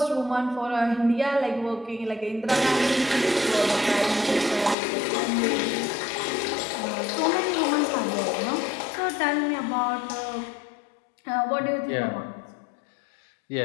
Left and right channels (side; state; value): right; drops out; at 4.8 s